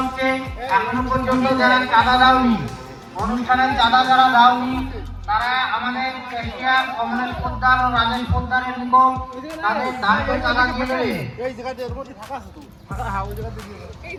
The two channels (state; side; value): identical; both; correlation 1.00